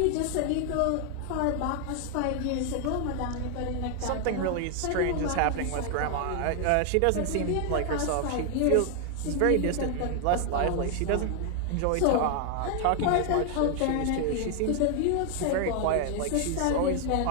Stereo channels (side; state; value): both; different; correlation 0.00